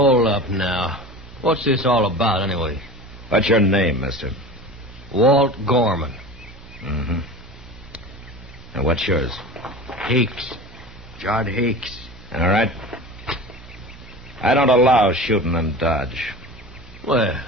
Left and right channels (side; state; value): both; normal; correlation 0.34